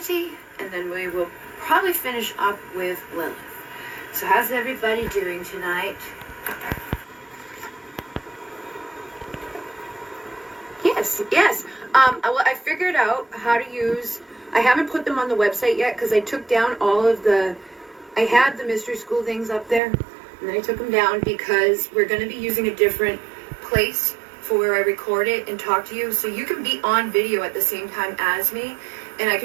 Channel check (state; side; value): drops out; left; at 19.8 s